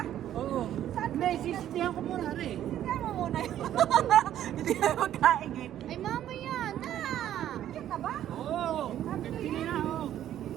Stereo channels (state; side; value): quieter; left; 11.5 dB